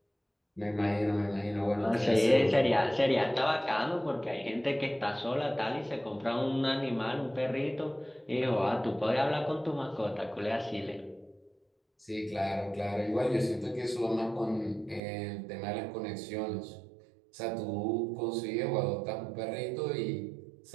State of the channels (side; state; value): left; drops out; at 15.0 s